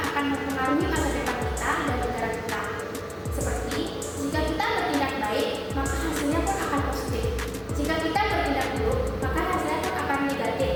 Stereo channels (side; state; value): both; identical; correlation 1.00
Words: mempengaruhi masa depan kita dan negara kita. Seperti jika kita bertindak baik, maka hasilnya pun akan positif. Jika kita bertindak buruk, maka hasilnya pun akan negatif,